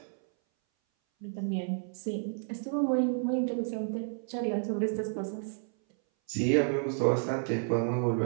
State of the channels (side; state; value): left; silent; 57 dB below the other